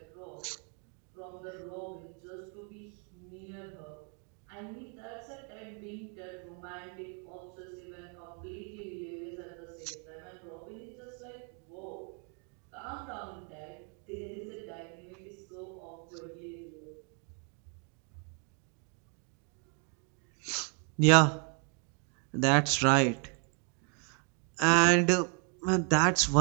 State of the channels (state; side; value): quieter; left; 40.0 dB